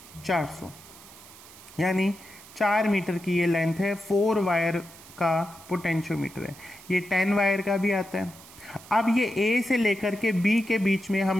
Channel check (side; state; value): right; noise; hiss, 20 dB below the sound